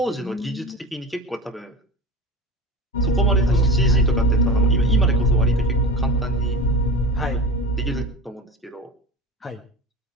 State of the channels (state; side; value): normal; both; correlation 0.30